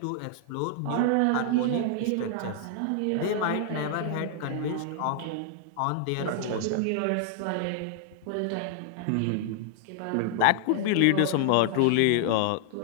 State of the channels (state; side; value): different; both; correlation 0.00